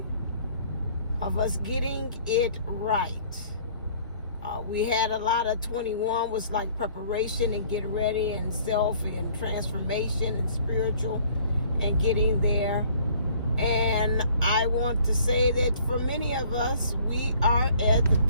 of us getting it right. We had a lot of 21 was like preparation and get ready and self and transformation and spiritual and getting there. And I want to say that for many of us, we are at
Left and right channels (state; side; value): inverted; both; correlation -0.56